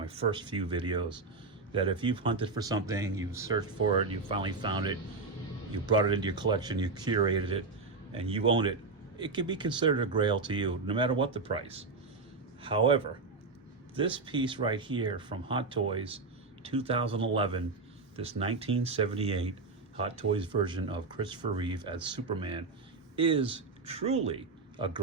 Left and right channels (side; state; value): left; quieter; 4.0 dB